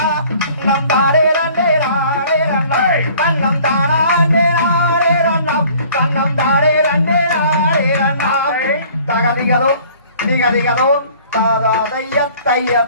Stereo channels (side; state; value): both; inverted; correlation -0.52